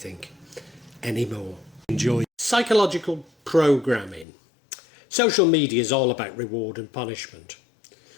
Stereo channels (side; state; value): right; drops out; at 4.2 s